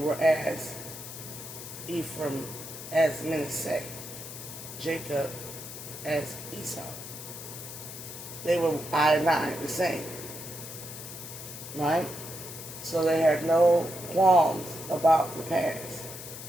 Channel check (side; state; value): left; noise; hiss, 11 dB below the sound